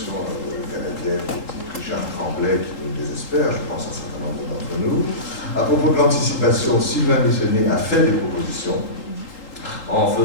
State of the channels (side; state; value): right; late; 3.8 ms